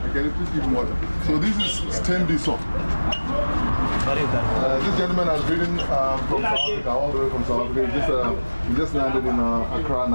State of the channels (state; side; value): inverted; both; correlation -1.00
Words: Can you please give him water? So this is Stembiso. This gentleman has ridden from South Africa, all the way from South Africa. He just landed in Accra